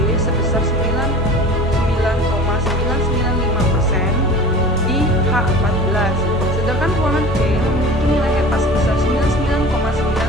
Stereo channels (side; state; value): both; normal; correlation 0.38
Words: sebesar 99,995% di H14, sedangkan ruangan C memiliki nilai HEPA sebesar